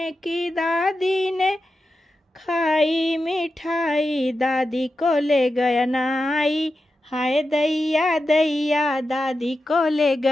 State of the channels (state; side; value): normal; both; correlation 0.91